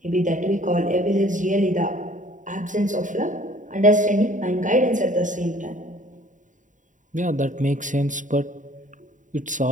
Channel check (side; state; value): left; late; 0.37 ms